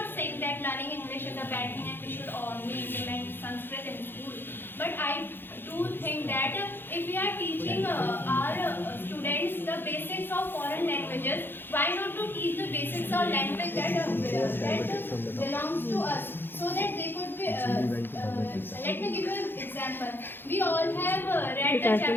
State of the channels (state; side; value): late; right; 0.10 ms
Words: saying that learning English is a bad thing and we should only implement Sanskrit in school. But I do think that if we are teaching our students the basics of foreign languages, why not to teach the basics of language that belongs to us, so that they could be. Let me give you an example. We all have read the